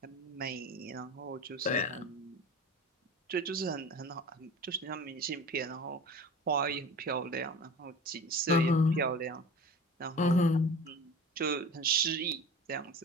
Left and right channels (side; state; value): both; normal; correlation 0.36